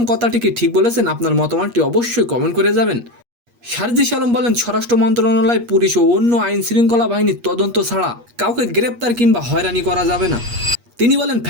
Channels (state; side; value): late; left; 8.4 ms